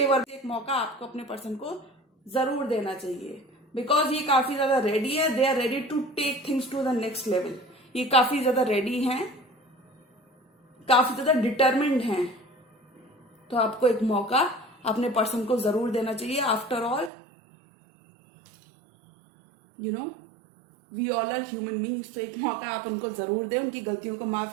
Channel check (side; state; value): left; drops out; at 17.1 s